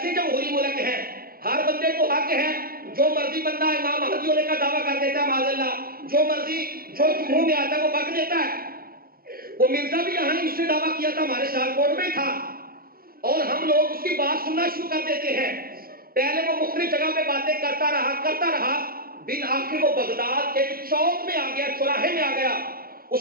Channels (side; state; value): left; late; 0.43 ms